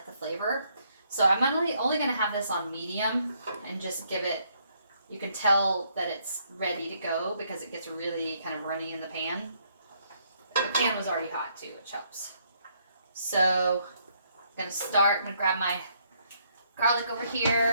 the flavor. So I'm only going to have this on medium and just give it, you can tell that it's ready to go because it gets really kind of runny in the pan. The pan was already hot too, which helps. So I'm going to grab my garlic over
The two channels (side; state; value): both; inverted; correlation -0.71